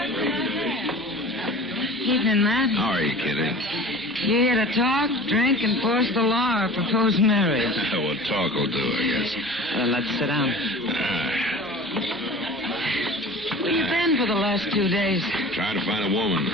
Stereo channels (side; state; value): both; normal; correlation 0.40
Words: Evening, Matt. How are you, Kitty? You here to talk, drink, enforce the law, or propose marriage? Well, talk will do, I guess. Let's sit down. Where you been for the last 2 days? Trying to find a woman.